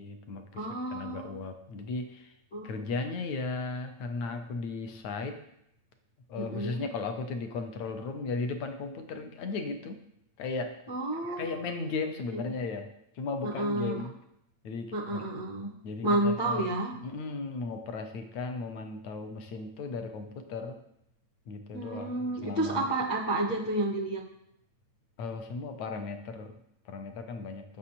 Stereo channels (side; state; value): right; late; 8.8 ms